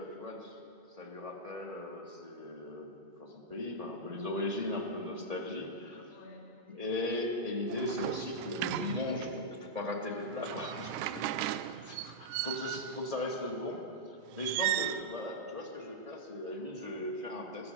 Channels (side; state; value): left; late; 1.8 ms